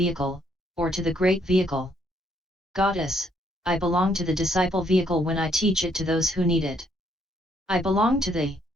or to the great vehicle? Goddess, I belong to the disciple vehicle when I teach it to those who need it. I belong to the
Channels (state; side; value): normal; both; correlation 0.70